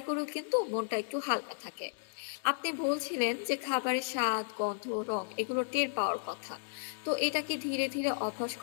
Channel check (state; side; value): silent; right; digital silence